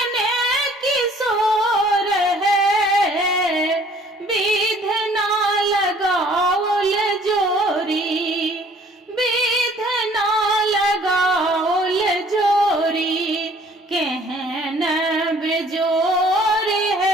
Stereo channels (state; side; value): normal; both; correlation 0.56